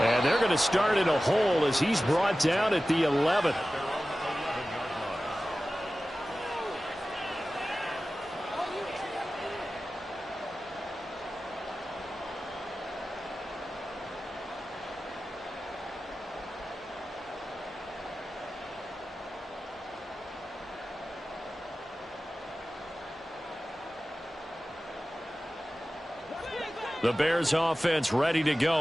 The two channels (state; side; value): normal; both; correlation 0.95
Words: And they're going to start in a hole as he's brought down at the 11. The Bears offense ready to